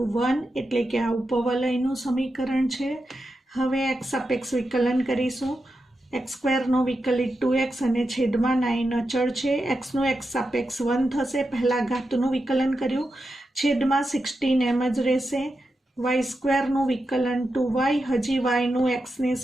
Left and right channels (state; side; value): normal; both; correlation 0.88